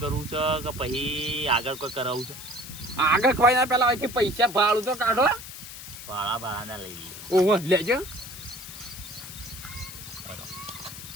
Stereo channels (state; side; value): noise; left; hiss, 12 dB below the sound